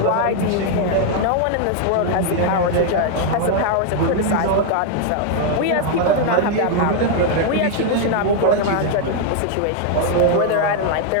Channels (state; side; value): different; both; correlation 0.00